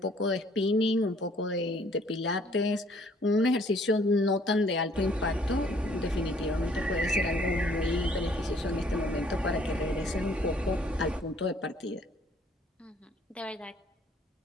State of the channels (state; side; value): normal; both; correlation 0.60